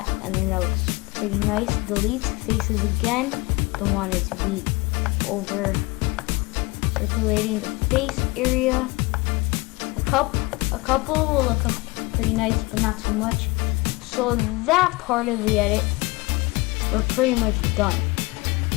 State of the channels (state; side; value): quieter; right; 24.3 dB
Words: and then that looks pretty nice. Delete faces again. Don't want it to be over circulating the face area. A couple will look pretty nice, but not too much. So that part of the edit, we're pretty much done.